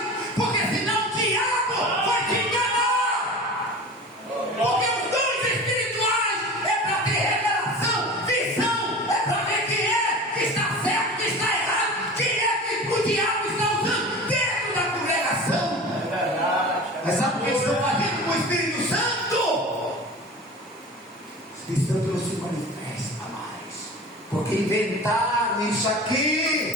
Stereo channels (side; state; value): both; normal; correlation 0.35